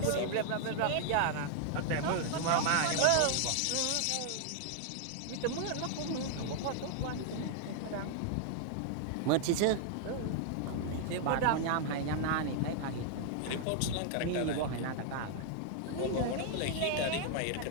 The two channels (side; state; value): both; different; correlation 0.00